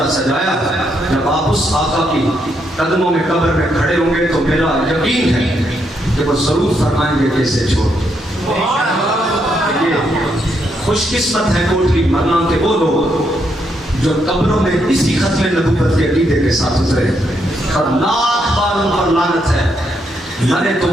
سجایا۔ جب آپ اس آقا کی قدموں میں قبر میں کھڑے ہوں گے تو میرا یقین ہے کہ وہ ضرور فرمائیں گے کہ اسے چھوڑ۔ یہ خوش قسمت ہے کوٹلی مرنا کے وہ لوگ جو قبروں میں اسی ختم نبوت کے عقیدے کے ساتھ اترے، اور لاکھ بار ان پر لعنت ہے، مرے تو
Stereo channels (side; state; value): both; normal; correlation 0.77